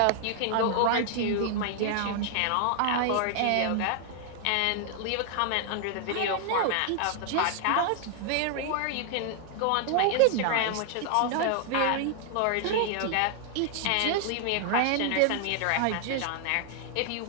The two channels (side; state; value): both; different; correlation 0.00